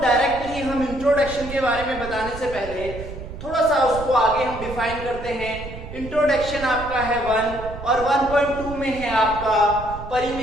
हम इंट्रोडक्शन के बारे में बताने से पहले थोड़ा सा उसको आगे हम डिफाइन करते हैं। इंट्रोडक्शन आपका है 1 और 1.2 में है आपका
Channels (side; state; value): right; noise; rumble, 11 dB below the sound